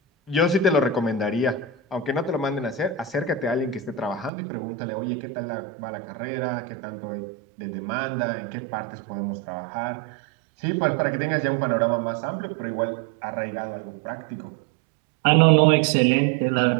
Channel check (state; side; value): drops out; left; at 4.3 s